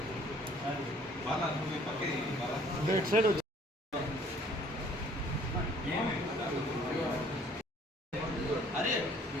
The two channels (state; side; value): normal; both; correlation 0.57